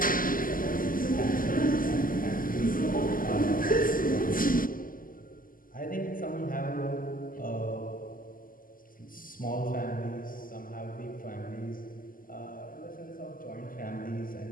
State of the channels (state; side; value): late; right; 0.41 ms